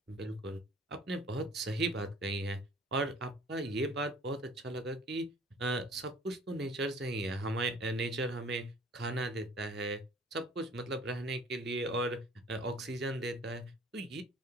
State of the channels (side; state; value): both; normal; correlation 0.51